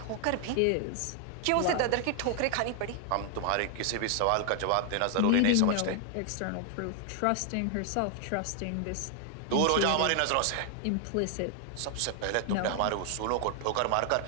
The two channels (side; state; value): both; different; correlation 0.00